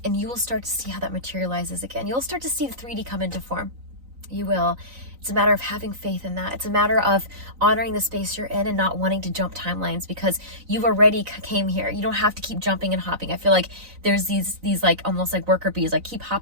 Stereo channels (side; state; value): left; late; 3.9 ms